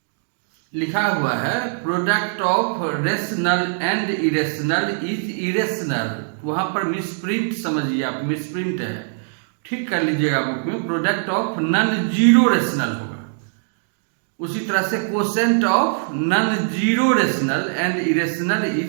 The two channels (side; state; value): left; silent; digital silence